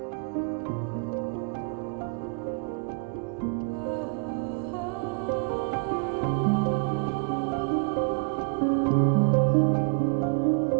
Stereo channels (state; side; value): quieter; left; 36.8 dB